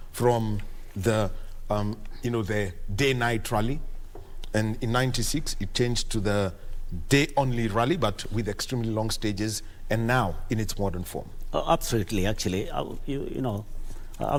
from the, the day-night rally, and in '96 it changed to the day-only rally, but with extremely long stages, and now in its modern form. Absolutely, actually,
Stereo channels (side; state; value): both; identical; correlation 1.00